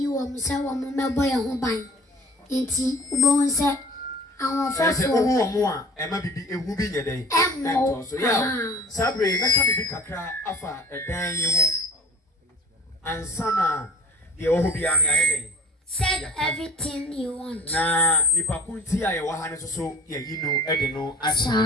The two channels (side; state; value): both; normal; correlation 0.45